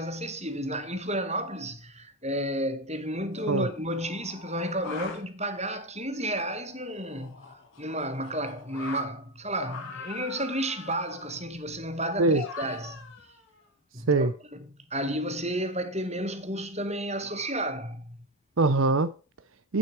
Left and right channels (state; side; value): normal; both; correlation 0.14